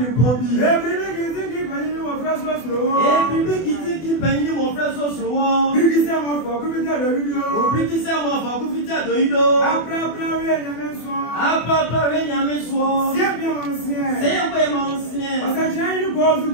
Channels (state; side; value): late; right; 24 ms